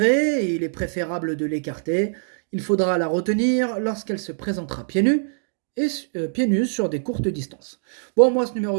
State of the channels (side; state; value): left; silent; digital silence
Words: et il est préférable de l'écarter. Il faudra la retenir lorsqu'elle se présentera pieds nus sur des courtes distances. Bon, moi ce